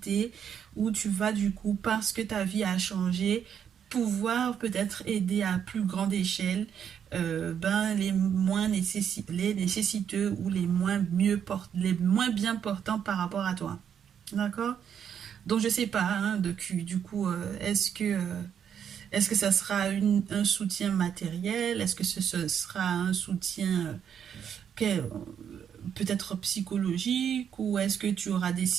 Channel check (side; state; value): left; quieter; 8.4 dB